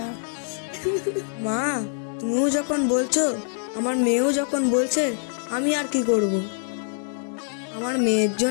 মা, তুমিও যখন বলছো, আমার মেয়েও যখন বলছে, আমি আর কি করব? আমার মেয়ের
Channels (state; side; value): silent; right; digital silence